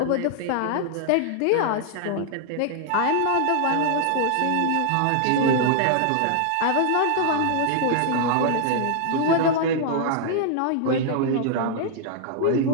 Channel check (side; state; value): both; different; correlation 0.00